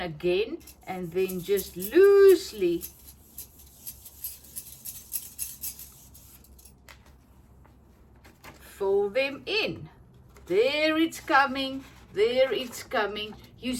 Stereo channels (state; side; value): identical; both; correlation 1.00